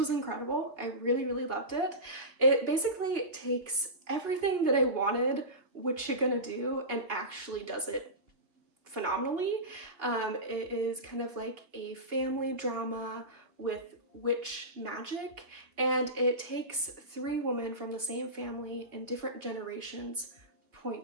incredible. I really loved it. It basically takes everything that I wanted What You Gonna Do and actually does it phenomenally. It is kind of like a family drama with witch magic, and it takes 3 women from the same family in different generations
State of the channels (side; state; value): left; late; 2.6 ms